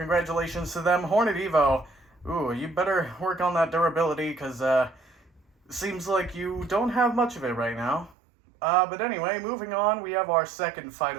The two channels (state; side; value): drops out; left; at 8.2 s